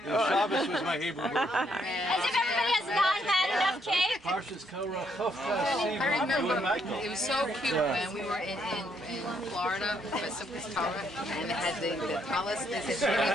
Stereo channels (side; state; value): both; normal; correlation 0.73